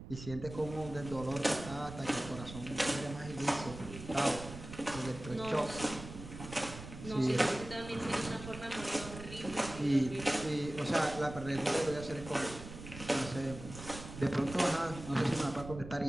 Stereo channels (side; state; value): right; noise; rumble, 12 dB below the sound